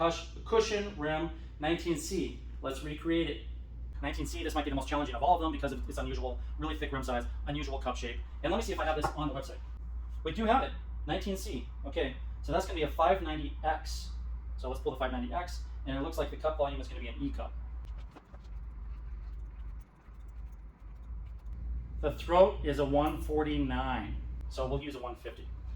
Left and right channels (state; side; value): identical; both; correlation 1.00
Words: rim 19C. Let's recreate it. 19C, this might be the most challenging of all of them because of its unusual, really thick rim size, unusual cup shape. And let me see if I have this on the website. We do have it, 19C. Okay, so that's going to be a 590X. So let's pull the 590X, and it looks like the cup volume is going to be an E cup. The throat is a 149, so we'll use a 150.